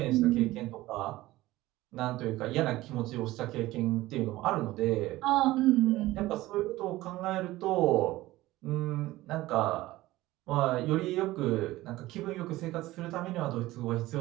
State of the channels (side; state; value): left; quieter; 17.4 dB